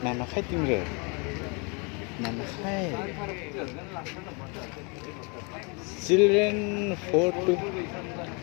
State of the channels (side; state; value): right; quieter; 32.2 dB